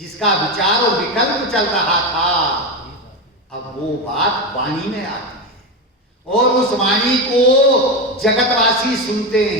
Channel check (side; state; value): both; normal; correlation 0.15